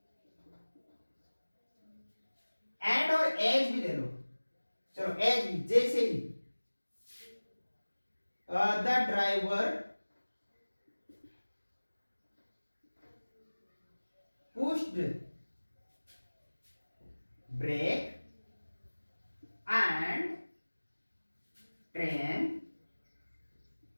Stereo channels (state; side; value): inverted; both; correlation -1.00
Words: एंड और एज भी ले लो। चलो एज भी, जैसे ही the driver pushed brake and train